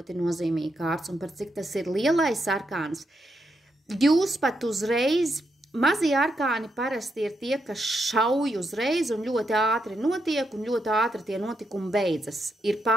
nozīmīga kārts, un par cik tas ir lielais arkāns. Jūs pat uzreiz, mazie arkāni parasti ir tie, kas šauj uzreiz un ļoti ātri notiek, un ļoti ātri tie notikumi beidzas. Ir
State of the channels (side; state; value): both; normal; correlation 0.82